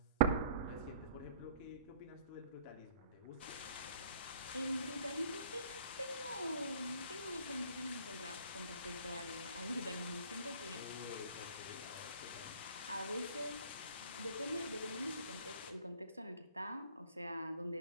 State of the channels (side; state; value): both; inverted; correlation -0.48